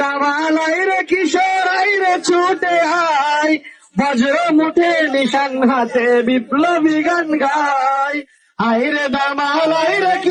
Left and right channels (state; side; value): identical; both; correlation 1.00